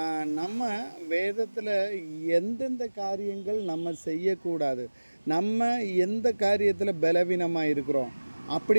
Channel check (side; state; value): both; inverted; correlation -1.00